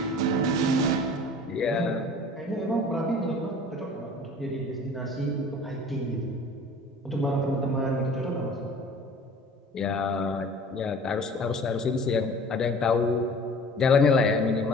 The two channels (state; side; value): normal; both; correlation 0.45